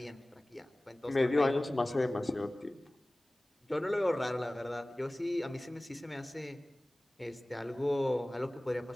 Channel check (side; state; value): both; normal; correlation 0.98